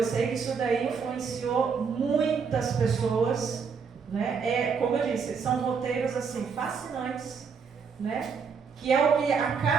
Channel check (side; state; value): left; quieter; 5.8 dB